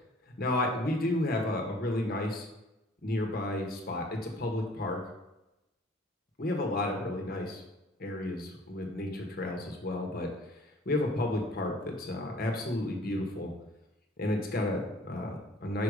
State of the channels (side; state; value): both; normal; correlation 0.53